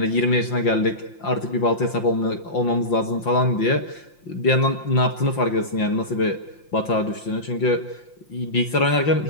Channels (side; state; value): right; late; 5.8 ms